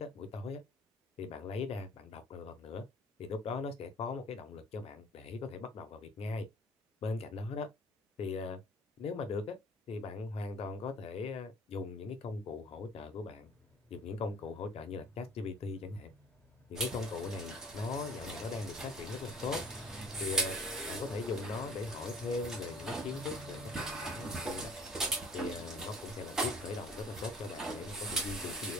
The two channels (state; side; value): normal; both; correlation 0.49